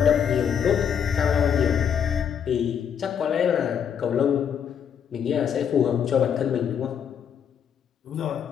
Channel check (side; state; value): right; quieter; 8.0 dB